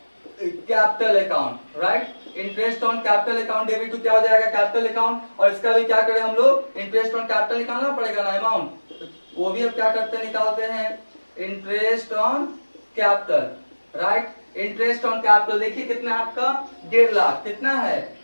capital account, right. Interest on capital account debit to क्या हो जाएगा, कैपिटल अकाउंट। और इसका भी क्या करें हम लोग, इंटरेस्ट ऑन कैपिटल निकालना पड़ेगा ना, अमाउंट, वो भी अब क्या करते हैं, निकालते हैं interest on capital, right. Interest on capital देखिए कितना है आपका, 1.5 लाख। कितना है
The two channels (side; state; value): both; inverted; correlation -1.00